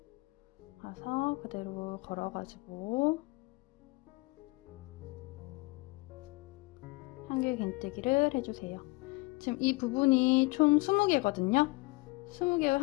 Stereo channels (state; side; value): quieter; right; 24.9 dB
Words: 가서 그대로 걸어가지고 한길 긴뜨기를 해주세요. 지금 이 부분이 총 20개거든요. 20개의